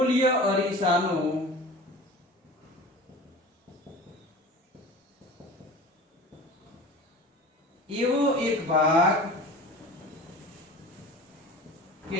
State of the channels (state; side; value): normal; both; correlation 0.38